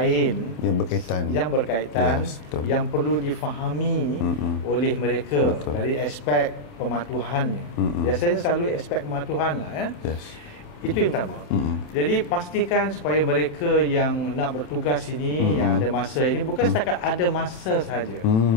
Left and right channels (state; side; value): late; right; 27 ms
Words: yang berkaitan yang perlu difahami oleh mereka dari aspek pematuhannya. Biasanya selalu aspek pematuhan lah Itu yang pertama. Jadi pastikan supaya mereka yang nak bertugas ini, yang ada masa ini, bukan setakat ada masa saja.